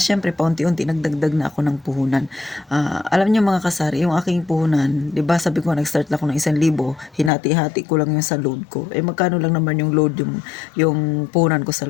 siyempre paunti-unti nagdagdag na ako ng puhunan. Alam niyo mga kasari, yung aking puhunan, 'di ba sabi ko nag-start lang ako ng 1,000, hinati-hati ko lang yung sa load ko. Eh magkano lang naman yung load yung puhunan ko sa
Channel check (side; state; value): right; drops out; at 7.3 s